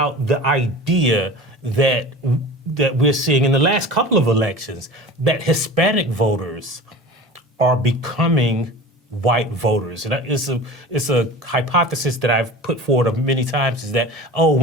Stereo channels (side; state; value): both; normal; correlation 0.36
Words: the idea that we're seeing in the last couple of elections, that Hispanic voters are becoming white voters. And it's a hypothesis that I've put forward many times, is that,